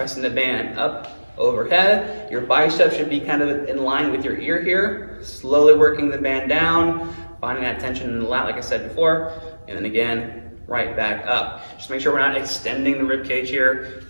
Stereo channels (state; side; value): inverted; both; correlation -1.00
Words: the band up overhead. Your bicep should be kind of in line with your ear here. Slowly working the band down, finding that tension in the lat like I said before, and then again, right back up. Just make sure we're not extending the rib cage here,